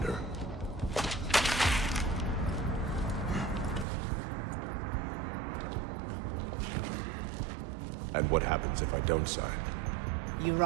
And what happens if I don't sign? You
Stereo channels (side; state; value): left; drops out; at 3.9 s